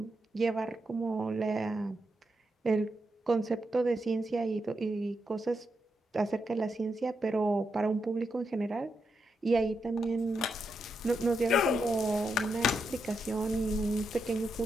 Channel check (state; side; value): normal; both; correlation 0.84